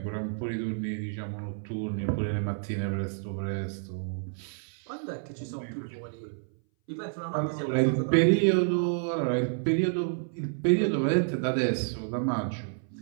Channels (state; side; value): silent; left; 58 dB below the other